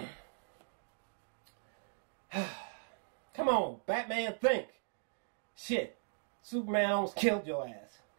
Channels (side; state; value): left; silent; digital silence